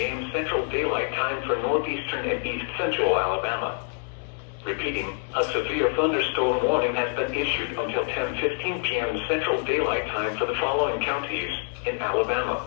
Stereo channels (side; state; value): right; silent; digital silence